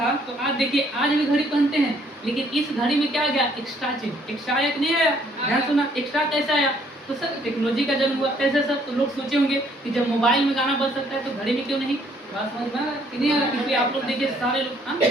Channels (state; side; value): normal; both; correlation 0.64